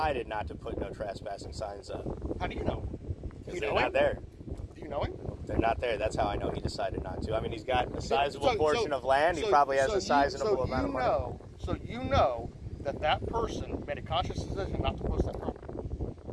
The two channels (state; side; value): identical; both; correlation 1.00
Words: not to put no trespassing signs up. How do you know? Because they're not there. Do you know him? They're not there. That's how I know he decided not to. I mean, he's got a sizable portion of land. He probably has a sizable amount of money. So you know that person made a conscious decision not to post that property.